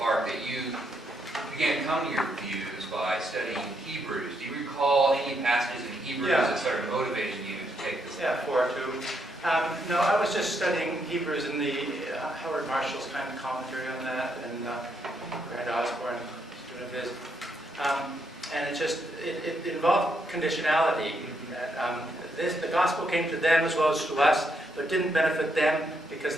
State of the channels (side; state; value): both; normal; correlation 0.77